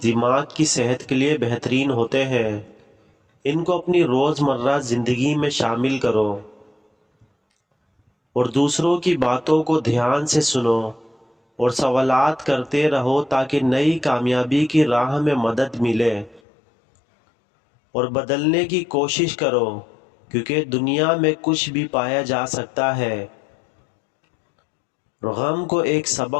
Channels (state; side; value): drops out; right; at 16.4 s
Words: دماغ کی صحت کے لیے بہترین ہوتے ہیں، ان کو اپنی روزمرہ زندگی میں شامل کرو۔ اور دوسروں کی باتوں کو دھیان سے سنو اور سوالات کرتے رہو تاکہ نئی کامیابی کی راہ میں مدد ملے۔ اور بدلنے کی کوشش کرو، کیونکہ دنیا میں کچھ بھی پایا جا سکتا ہے۔ غم کو ایک